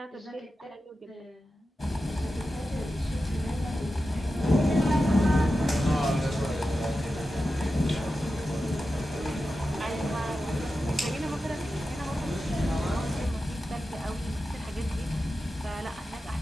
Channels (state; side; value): normal; both; correlation 0.92